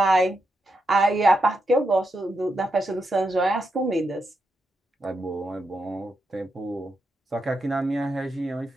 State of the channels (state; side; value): normal; both; correlation 0.84